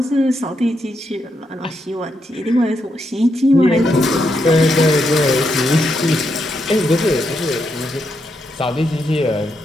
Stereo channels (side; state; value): both; normal; correlation 0.81